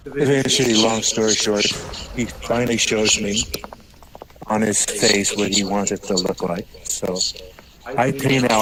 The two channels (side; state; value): both; identical; correlation 1.00